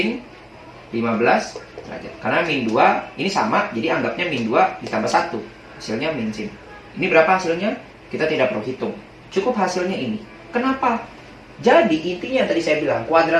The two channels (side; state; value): both; identical; correlation 1.00